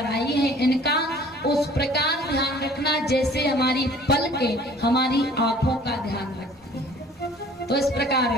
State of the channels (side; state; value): both; normal; correlation 0.52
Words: आई हैं, इनका उस प्रकार ध्यान रखना जैसे हमारी पलकें हमारी आंखों का ध्यान रखती हैं। तो इस प्रकार